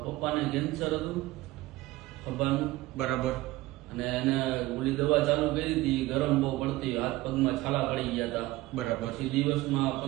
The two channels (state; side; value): quieter; left; 18.5 dB